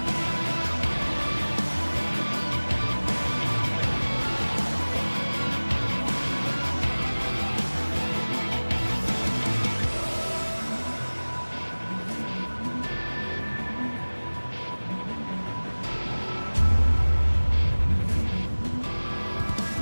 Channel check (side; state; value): both; inverted; correlation -1.00